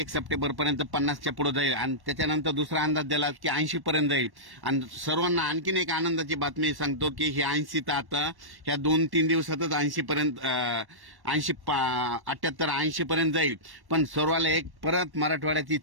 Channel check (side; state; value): left; late; 1.1 ms